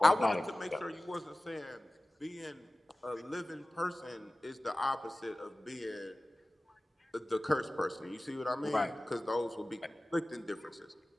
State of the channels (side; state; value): both; normal; correlation 0.96